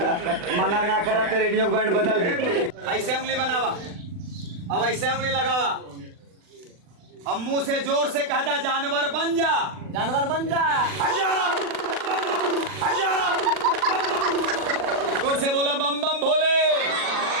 मना ना करा तो रेडियो बैंड बदल दे। ऐसे उंगली बनावा, अब ऐसे उंगली लगावा, अब मुंह से जोर से कहता जानवर बन जा, जानवर बन जा। जोर से बोला बम बम भोले।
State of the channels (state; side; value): late; left; 40 ms